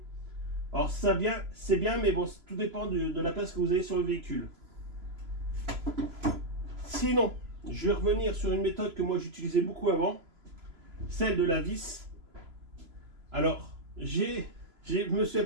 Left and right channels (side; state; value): left; late; 3.0 ms